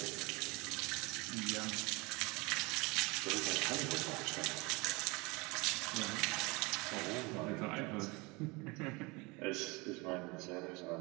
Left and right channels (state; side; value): quieter; left; 26.0 dB